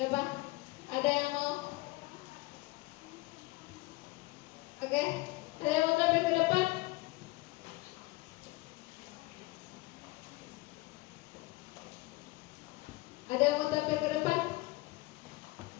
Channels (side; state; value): right; quieter; 21.6 dB